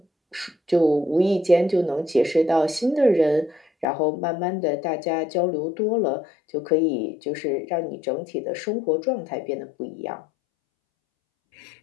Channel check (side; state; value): right; drops out; at 3.9 s